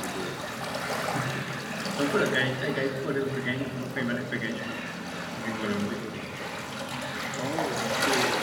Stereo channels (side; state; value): both; identical; correlation 1.00